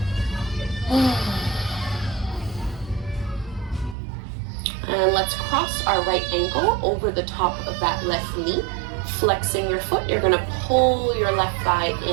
And let's cross our right ankle over the top of that left knee. Flexing your foot, you're gonna pull your left thigh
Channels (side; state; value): left; drops out; at 4.0 s